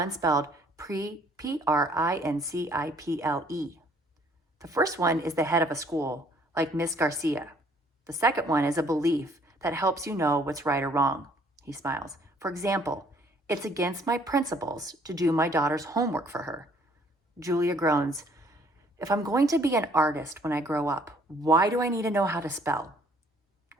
spelled Principle? The first one is the head of a school, like Miss Garcia. The second one is a belief that helps you know what's right or wrong. He smiles. For example, it's against my principles to do my daughter's homework for her. Julia groans. If I'm going to be an artist when I grow up, why do I need to know how to spell?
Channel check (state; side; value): normal; both; correlation 0.61